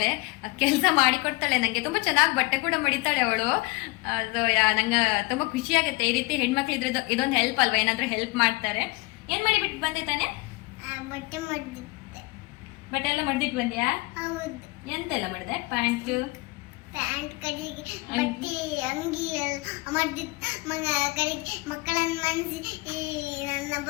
ಕೆಲಸ ಮಾಡಿಕೊಡ್ತಾಳೆ ನಂಗೆ. ತುಂಬಾ ಚೆನ್ನಾಗಿ ಬಟ್ಟೆ ಕೂಡ ಮಡಿತಾಳೆ ಅವಳು. ಅದು ನಂಗೆ ತುಂಬಾ ಖುಷಿ ಆಗುತ್ತೆ. ಈ ರೀತಿ ಹೆಣ್ಮಕ್ಳು ಇದ್ರೆ ಇದೊಂದು ಹೆಲ್ಪ್ ಅಲ್ವಾ, ಏನಾದ್ರೂ ಹೆಲ್ಪ್ ಮಾಡ್ತಾರೆ. ಏನ್ ಮಾಡಿಬಿಟ್ಟು ಬಂದೆ ತಾನೆ? ಬಟ್ಟೆ ಎಲ್ಲ ಮಡ್ದಿಟ್ಟು ಬಂದ್ಯಾ? ಎಂತೆಲ್ಲ ಮಾಡಿದೆ? ಪ್ಯಾಂಟ್ ಕಡೆಗೆ ಬಟ್ಟೆ ಅಂಗಿ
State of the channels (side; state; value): right; quieter; 25.1 dB